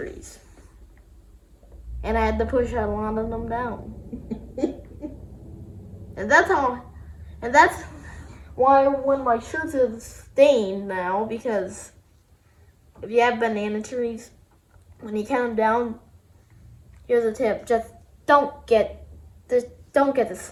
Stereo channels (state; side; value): identical; both; correlation 1.00